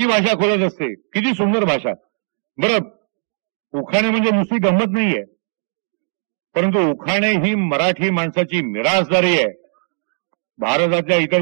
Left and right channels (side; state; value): left; silent; digital silence